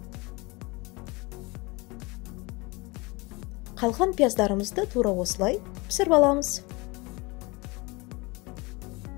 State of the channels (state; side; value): quieter; right; 25.3 dB